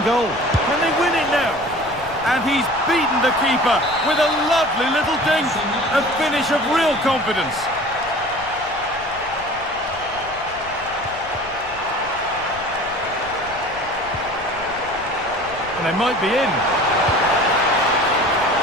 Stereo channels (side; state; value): left; noise; rumble, 20 dB below the sound